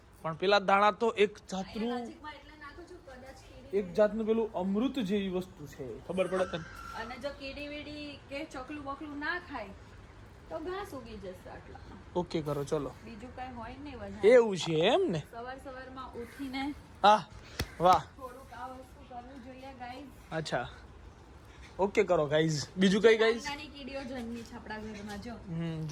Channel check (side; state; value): both; identical; correlation 1.00